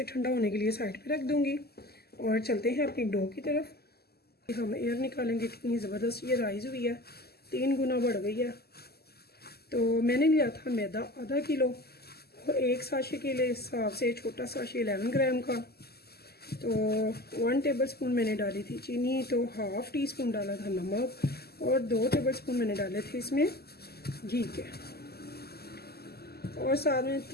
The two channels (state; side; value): late; right; 0.46 ms